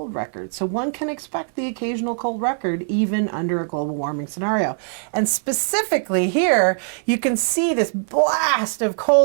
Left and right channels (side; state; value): left; silent; 63 dB below the other